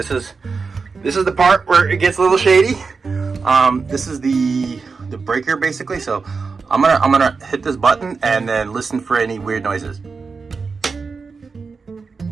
is the part where it gets a little shady. This is the breaker basically. So I'm gonna hit this button and then listen for any weird noises.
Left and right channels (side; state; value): left; quieter; 4.8 dB